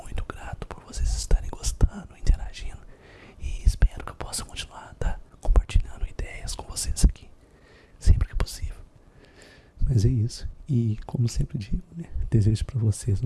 muito grato por vocês estarem gostando, interagindo, e espero que eu possa continuar compartilhando ideias com vocês aqui, sempre que possível. Mas é isso, e como sempre digo, né, desejo para vocês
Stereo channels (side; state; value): both; identical; correlation 1.00